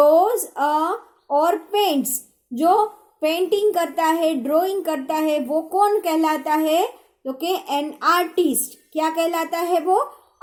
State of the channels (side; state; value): both; identical; correlation 1.00